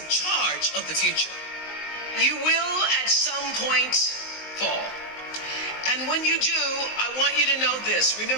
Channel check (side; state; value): right; late; 19 ms